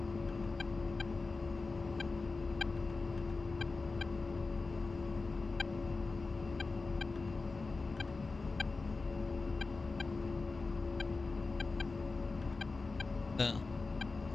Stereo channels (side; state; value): right; quieter; 3.9 dB